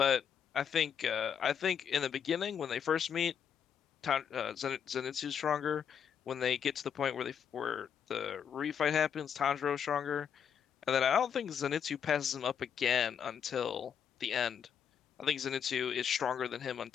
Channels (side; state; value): right; quieter; 7.9 dB